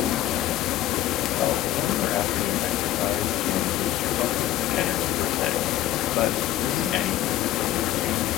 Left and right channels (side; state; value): right; quieter; 13.5 dB